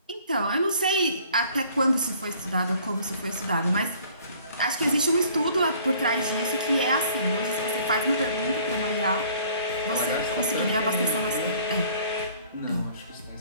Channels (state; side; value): inverted; both; correlation -0.55